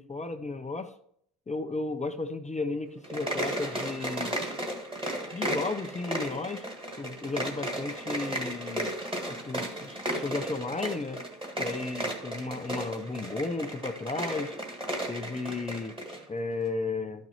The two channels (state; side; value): normal; both; correlation 0.49